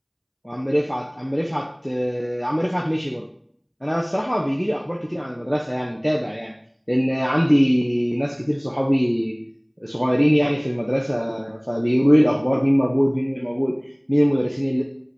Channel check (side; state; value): both; identical; correlation 1.00